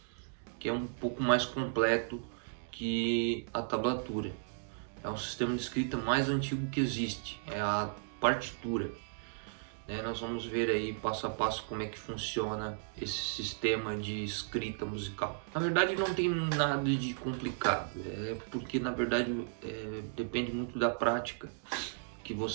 que é um pouco mais completo que a tablatura. É um sistema de escrita mais antigo que existe, é a partitura. Nós vamos ver aí passo a passo como é que funciona esse sistema de escrita musical. Na verdade não tem nada de complicado, porque na verdade depende muito da prática que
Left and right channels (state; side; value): silent; left; digital silence